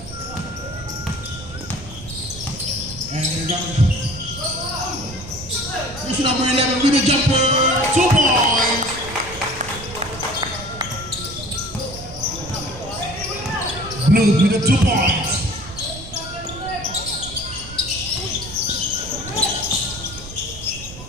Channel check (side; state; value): right; noise; rumble, 14 dB below the sound